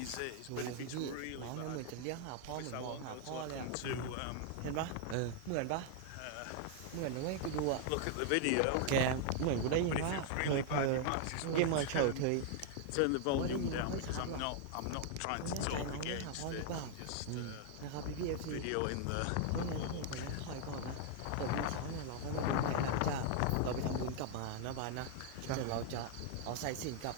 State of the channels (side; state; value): both; different; correlation 0.00